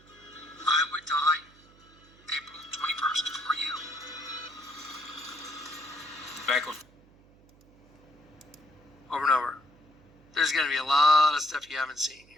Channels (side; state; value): right; noise; hum, 27 dB below the sound